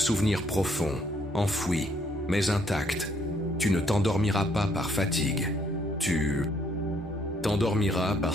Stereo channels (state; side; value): normal; both; correlation 0.68